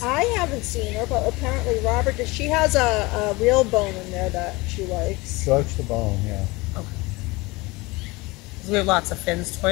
I haven't seen her, but apparently Robert, she has a real bone in there that she likes. She likes the bone, yeah. 'Cause we have lots of Finn's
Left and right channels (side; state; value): right; quieter; 23.4 dB